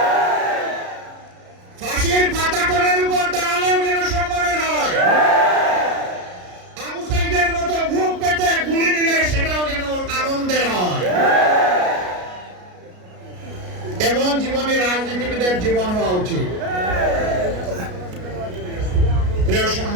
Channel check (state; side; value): late; left; 33 ms